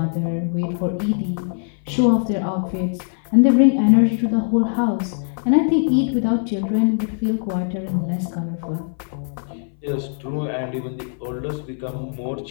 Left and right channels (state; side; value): silent; right; 60 dB below the other